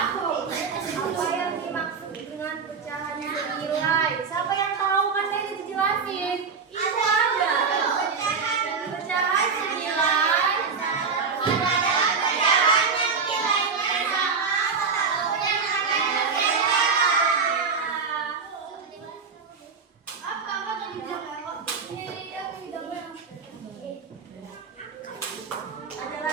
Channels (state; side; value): quieter; left; 5.4 dB